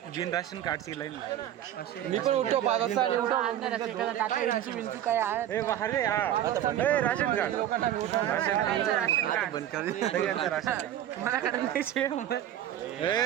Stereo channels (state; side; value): quieter; left; 11.6 dB